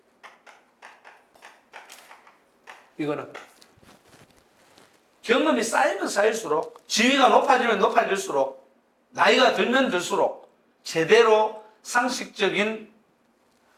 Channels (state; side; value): identical; both; correlation 1.00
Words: 이거는. 경험이 쌓이면 쌓일수록, 지위가 높아지면 높아질수록, 나이가 들면 들수록, 제대로 상식적인